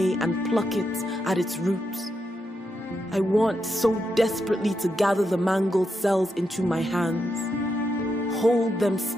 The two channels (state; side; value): normal; both; correlation 0.84